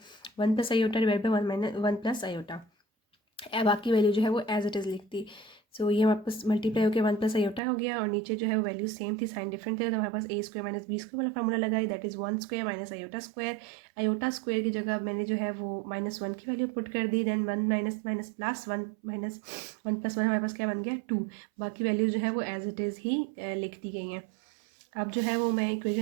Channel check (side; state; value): left; drops out; at 7.6 s